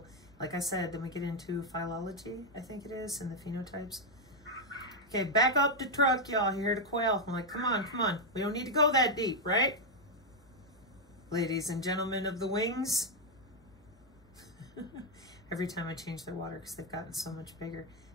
Like I said, then we get into phylology, I think it is, and the phenotypes. Okay, back up the truck, y'all. Here to quail. I'm like, come on, come on. We don't need to go that deep, right? Ladies and gentlemen of the wings. Every time I change their water because they've gotten so much bigger.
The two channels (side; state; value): both; normal; correlation 0.01